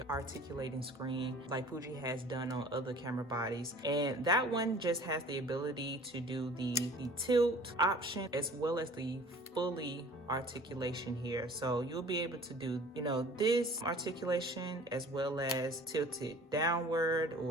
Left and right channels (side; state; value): both; normal; correlation 0.47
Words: articulating screen like Fuji has done on other camera bodies, and that one just has the ability to do the tilt option as well as the fully articulation here. So you'll be able to do, you know, this articulation as well as tilt it downward